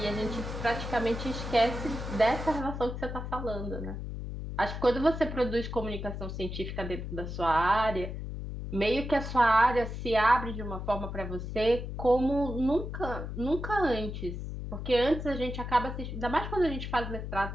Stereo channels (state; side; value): noise; left; hum, 6 dB below the sound